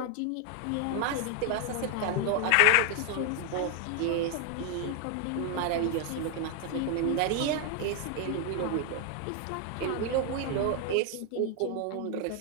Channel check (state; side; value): different; both; correlation 0.00